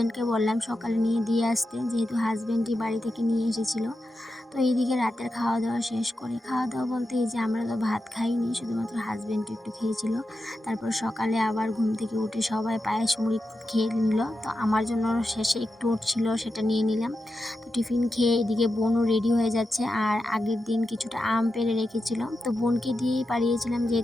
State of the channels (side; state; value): both; normal; correlation 0.90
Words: বললাম সকালে নিয়ে দিয়ে আসতে, যেহেতু হাজব্যান্ডই বাড়ি থেকে নিয়ে এসেছিলো। তো তো এইদিকে রাতের খাওয়া দাওয়া শেষ করে, খাওয়া দাওয়া বলতে এই যে আমরা তো ভাত খাইনি, শুধুমাত্র হাজব্যান্ড একটু খেয়েছিল। তারপর সকালে আবার ঘুম থেকে উঠে সবাই পায়েস মুড়ি খেয়ে নিল। তো আমার জন্য শেষে একটু ছিল, সেটা নিয়ে নিলাম। তো টিফিন খেয়ে এদিকে বোনও রেডি হয়ে যাচ্ছে। আর আগের দিন কিছুটা আম পেড়ে রেখেছিল, তো বোনকে দিয়েই পাড়িয়েছিলাম,